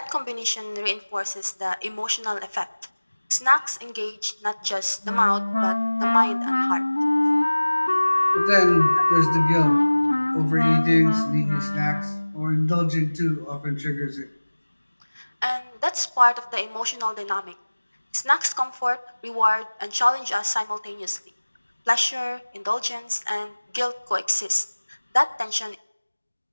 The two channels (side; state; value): both; inverted; correlation -1.00